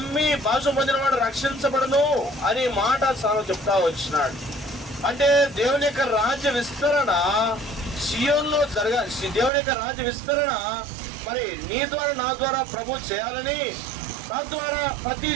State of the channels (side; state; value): left; drops out; at 9.5 s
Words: భాష పొందిన వాడు రక్షించబడను అని మాట చెప్తా వచ్చినాడు. అంటే దేవుని యొక్క రాజ్య విస్తరణ సియోన్లో దేవుని యొక్క రాజ్య విస్తరణ మరి నీ ద్వారా నా ద్వారా ప్రభు చేయాలని, తద్వారా ప్రతి